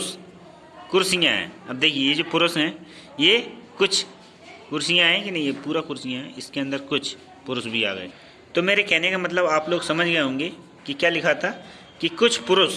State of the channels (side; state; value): both; identical; correlation 1.00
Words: कुर्सियाँ हैं। अब देखिए, ये जो पुरुष हैं, ये कुछ कुर्सियाँ हैं कि नहीं? ये पूरा कुर्सियाँ हैं, इसके अंदर कुछ पुरुष भी आ गए। तो मेरे कहने का मतलब आप लोग समझ गए होंगे कि क्या लिखा था, कि कुछ